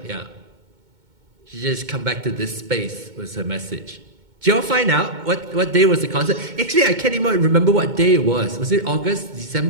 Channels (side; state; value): left; late; 2.2 ms